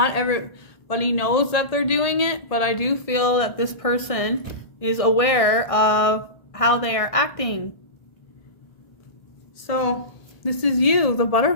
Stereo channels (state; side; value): late; right; 1.6 ms